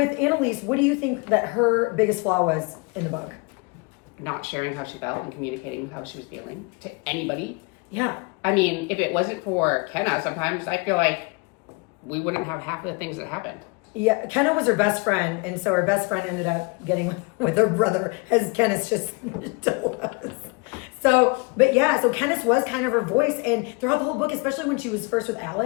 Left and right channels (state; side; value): quieter; right; 29.8 dB